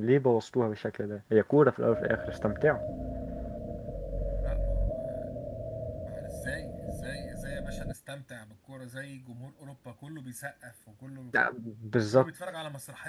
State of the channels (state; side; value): identical; both; correlation 1.00